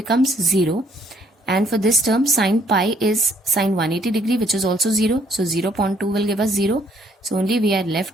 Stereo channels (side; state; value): both; normal; correlation 0.65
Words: 0. And for this term, sin pi is sin 180 degree, which is also 0. So 0 upon 2 will give us 0. So only we are